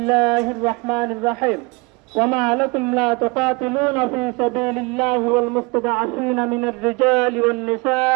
الرحمن الرحيم. وما لكم لا تقاتلون في سبيل الله والمستضعفين من الرجال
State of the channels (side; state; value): left; quieter; 27.1 dB